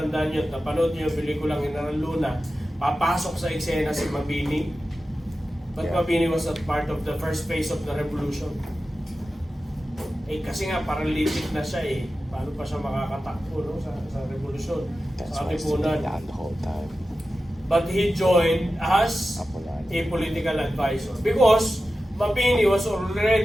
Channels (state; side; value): normal; both; correlation 0.93